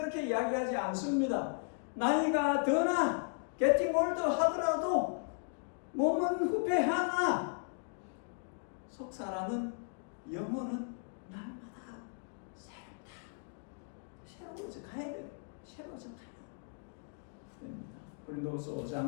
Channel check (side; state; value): right; silent; 54 dB below the other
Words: 이야기하지 않습니다. 나이가 드나 getting older 하더라도 몸은 후패하나 속사라는 영혼은 날마다 새롭다. 새로워져 가야 돼요. 새로워져 가야 됩니다. 고린도후서